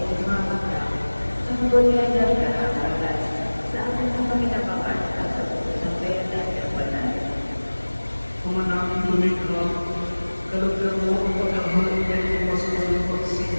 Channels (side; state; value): both; inverted; correlation -1.00